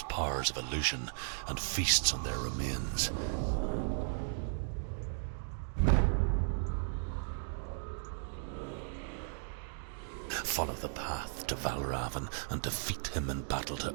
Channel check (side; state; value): left; silent; digital silence